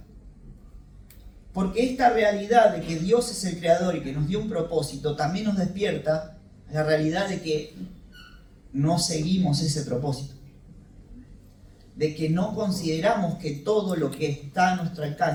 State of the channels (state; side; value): identical; both; correlation 1.00